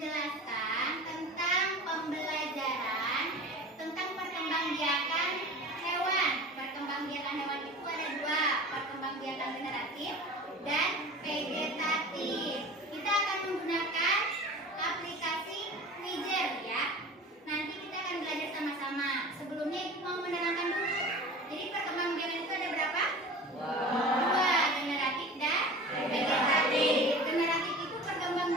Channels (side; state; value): both; normal; correlation 0.38